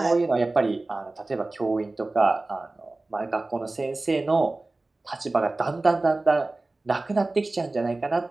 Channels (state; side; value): quieter; left; 3.1 dB